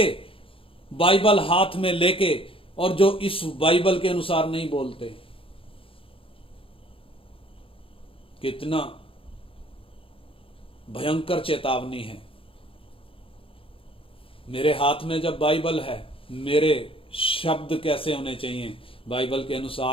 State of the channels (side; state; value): right; late; 0.26 ms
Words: बाइबल हाथ में लेके, और जो इस बाइबल के अनुसार नहीं बोलते। कितना भयंकर चेतावनी है। मेरे हाथ में जब बाइबल है, मेरे शब्द कैसे होने चाहिए? बाइबल के